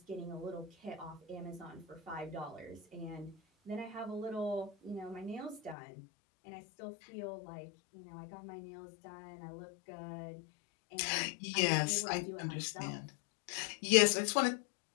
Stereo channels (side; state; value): right; drops out; at 5.8 s